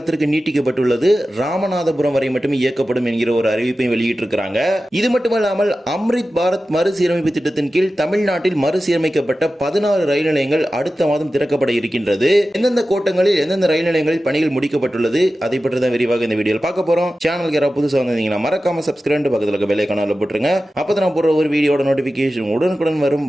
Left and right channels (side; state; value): both; normal; correlation 0.94